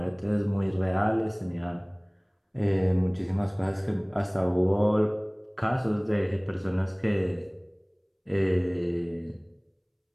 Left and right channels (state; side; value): identical; both; correlation 1.00